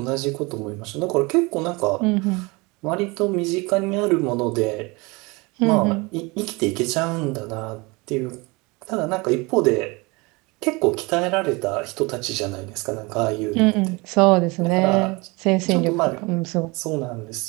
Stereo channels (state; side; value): quieter; left; 26.0 dB